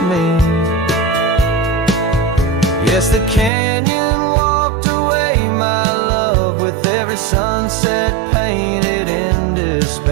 me. Yes, the canyon walked away, my love, with every sunset painted in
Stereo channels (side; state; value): left; drops out; at 3.5 s